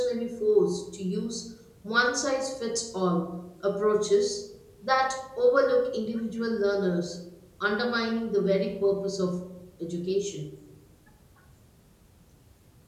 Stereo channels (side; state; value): both; identical; correlation 1.00